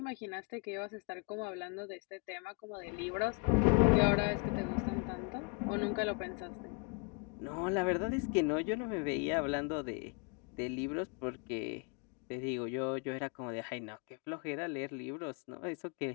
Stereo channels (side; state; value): right; quieter; 33.1 dB